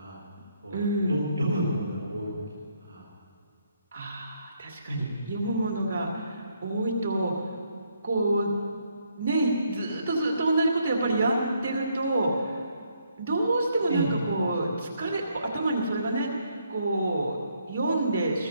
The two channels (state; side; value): inverted; both; correlation -0.72